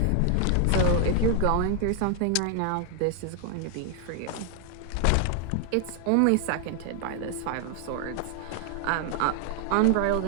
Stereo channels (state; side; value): different; both; correlation 0.00